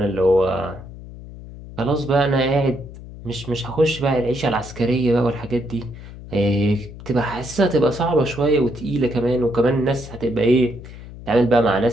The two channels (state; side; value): noise; left; hum, 15 dB below the sound